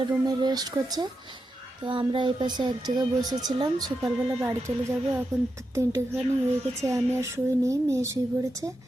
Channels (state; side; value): normal; both; correlation 0.87